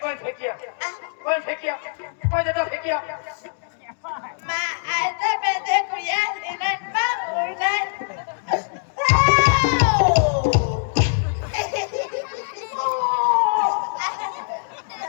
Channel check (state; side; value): silent; right; digital silence